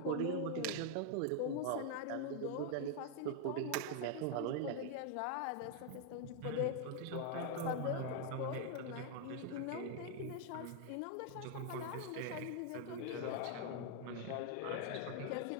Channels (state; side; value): different; both; correlation 0.00